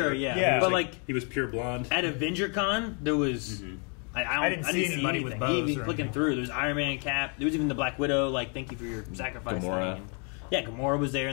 yeah. Yeah. But like he was pure blonde. at AvengerCon, there was... I didn't see anybody with bows Even or clicking anything. through, there was Iron Man, Cap. There was even the Black Widow. Like, thank you for your sacrifice. Gamora. thing. Yeah, Gamora was there,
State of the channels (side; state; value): right; quieter; 38.1 dB